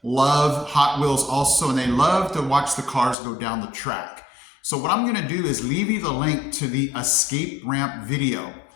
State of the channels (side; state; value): right; drops out; at 3.2 s